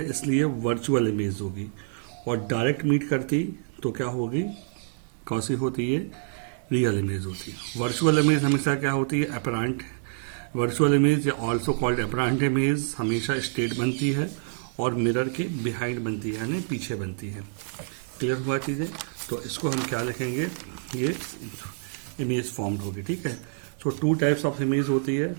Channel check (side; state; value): left; silent; digital silence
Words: इसलिए वर्चुअल इमेज होगी, और डायरेक्ट मीट करती तो क्या होगी, कौन सी होती है, रियल इमेज होती है. वर्चुअल इमेज हमेशा क्या होती है, अपरेंट. वर्चुअल इमेज या ऑल्सो कॉल्ड अपरेंट इमेज हमेशा स्टेट बनती है और मिरर के बिहाइंड बनती है, यानी पीछे बनती है। क्लियर हुआ चीज़ें? तो इसको हम क्या लिखेंगे, ये इमेज फॉर्म्ड होगी, ठीक है। सो टू टाइप्स ऑफ इमेज होती है।